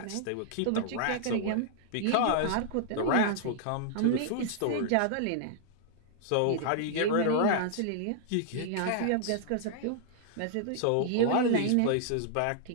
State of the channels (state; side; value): different; both; correlation -0.01